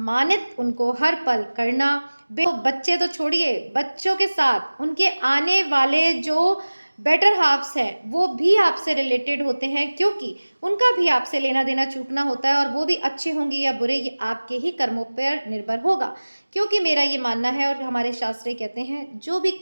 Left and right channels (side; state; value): both; inverted; correlation -1.00